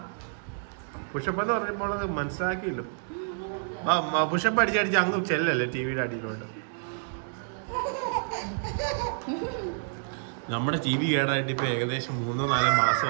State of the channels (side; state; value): left; silent; 59 dB below the other